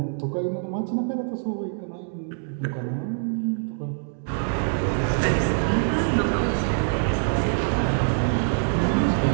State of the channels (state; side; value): silent; left; digital silence